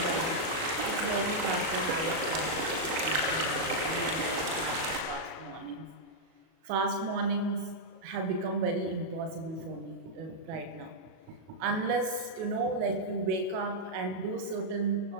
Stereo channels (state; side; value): late; left; 37 ms